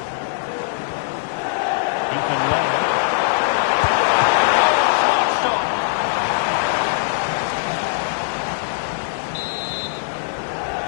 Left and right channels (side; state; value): right; silent; 56 dB below the other